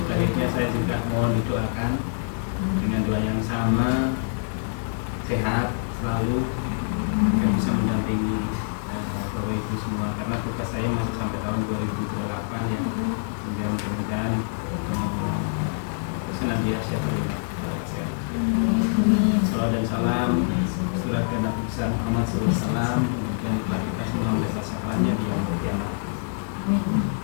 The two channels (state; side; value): silent; right; 61 dB below the other